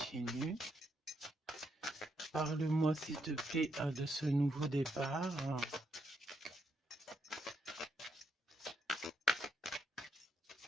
Parle-moi s'il te plaît de ce nouveau départ.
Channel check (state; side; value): normal; both; correlation 0.78